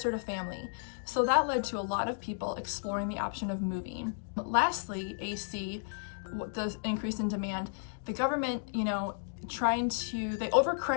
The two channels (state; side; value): silent; right; digital silence